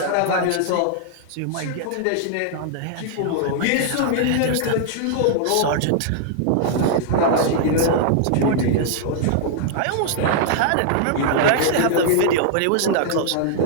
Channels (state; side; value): different; both; correlation -0.01